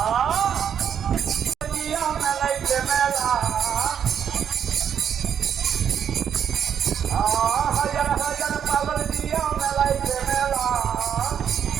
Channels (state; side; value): quieter; left; 8.4 dB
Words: दिया मैं लाइके मेला हजार हजार पागल दिया मैं लाइके मेला